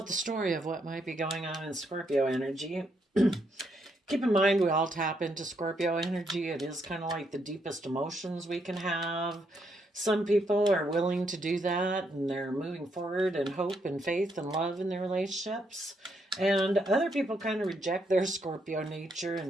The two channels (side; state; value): both; normal; correlation 0.76